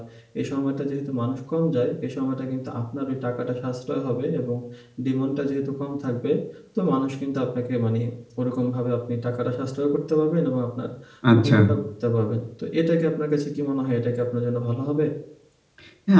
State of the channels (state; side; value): identical; both; correlation 1.00